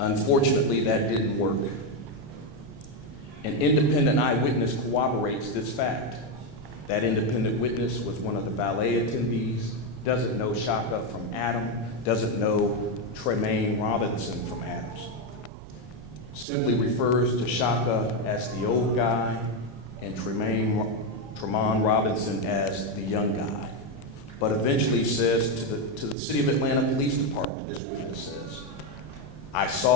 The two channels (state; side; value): normal; both; correlation 0.07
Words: that didn't work. An independent eyewitness corroborates this fact. That independent witness was one of the valet attendees, doesn't know Chaka from Adam, doesn't know Tremaine Robinson from Adams, simply refers to Chaka as the old guy and Tremont Robinson as the young guy, but eventually says to the City of Atlanta Police Department, this witness says, "I